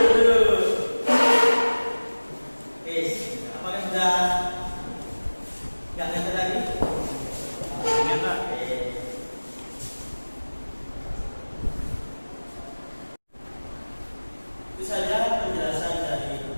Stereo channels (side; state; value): both; inverted; correlation -1.00